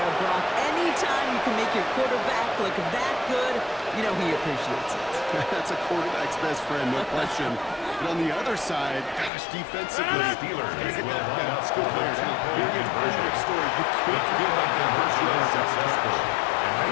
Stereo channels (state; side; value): drops out; right; at 9.3 s